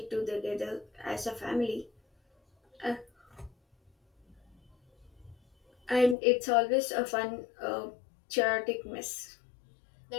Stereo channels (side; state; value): right; drops out; at 6.2 s